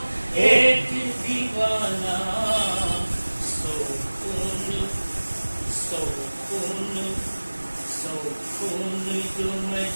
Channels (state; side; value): inverted; both; correlation -1.00